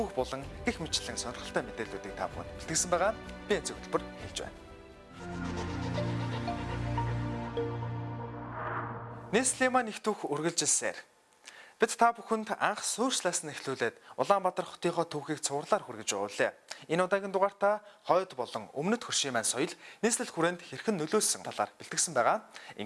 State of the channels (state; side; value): identical; both; correlation 1.00